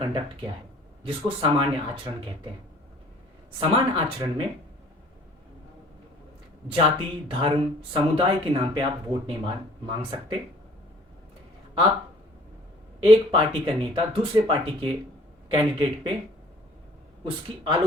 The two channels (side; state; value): both; normal; correlation 0.53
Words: क्या है, जिसको सामान्य आचरण कहते हैं। सामान्य आचरण में जाति, धर्म, समुदाय के नाम पे आप वोट नहीं मांग सकते। आप एक पार्टी का नेता दूसरे पार्टी के कैंडिडेट पे उसकी